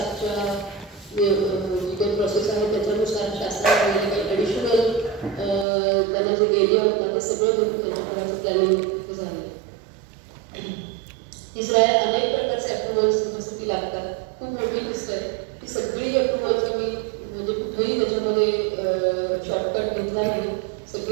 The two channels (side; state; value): left; drops out; at 5.7 s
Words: जी काही प्रोसेस आहे त्याच्यानुसार शासनाने काही ॲडिशनल त्यांना जे एरिया होता ते सगळं करून त्यांच्या घराचं प्लॅनिंग तिथे झालं. तिसरं आहे अनेक प्रकारचे अप्रुव्हल्स जसं लागतात. खूप मोठी लिस्ट आहे. ती सगळी अप्रुव्हल्स आम्ही म्हणजे कुठेही त्याच्यामध्ये शॉर्टकट घेतला नाही.